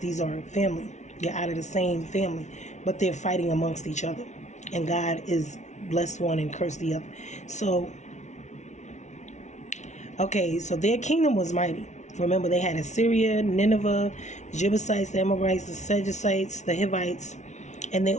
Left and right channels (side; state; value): right; late; 0.33 ms